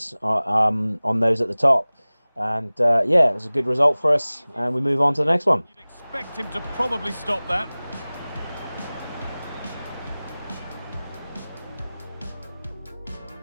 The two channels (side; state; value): both; inverted; correlation -0.99